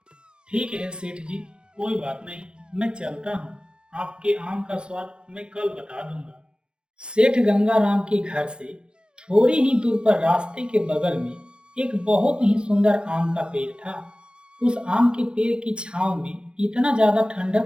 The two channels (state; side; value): late; left; 0.051 ms